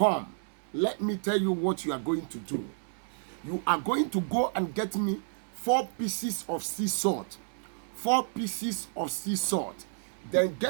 let me tell you what you are going to do. You are going to go and get me 4 pieces of sea salt, 4 pieces of sea salt. Then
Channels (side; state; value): left; silent; digital silence